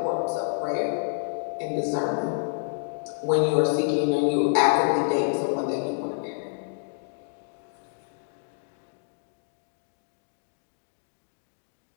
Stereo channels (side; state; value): right; silent; digital silence